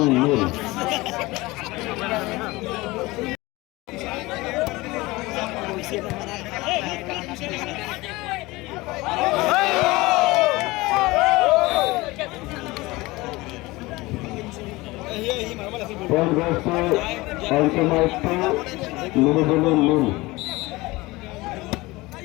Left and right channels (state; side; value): quieter; right; 21.3 dB